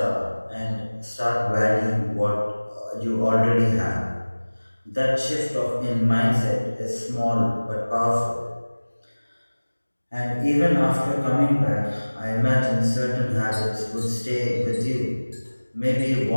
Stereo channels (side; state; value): both; inverted; correlation -1.00